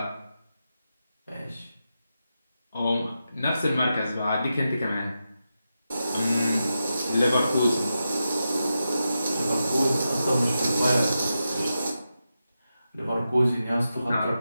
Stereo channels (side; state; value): both; inverted; correlation -0.89